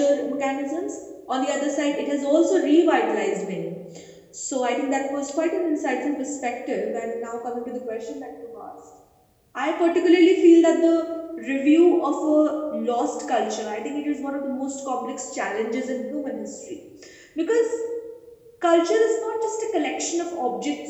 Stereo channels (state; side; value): identical; both; correlation 1.00